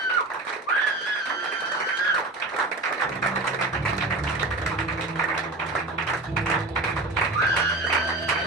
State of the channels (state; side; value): quieter; left; 3.0 dB